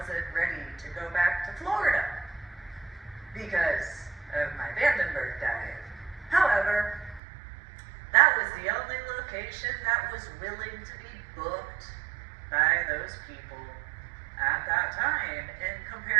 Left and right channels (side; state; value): left; drops out; at 7.2 s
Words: ready to go back to Florida because of my Vandenberg dive. However, that was the only location that was willing to be booked by those people at that time in